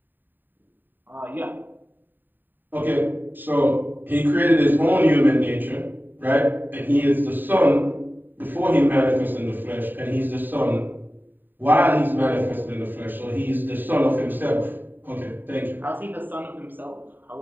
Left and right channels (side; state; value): left; late; 0.091 ms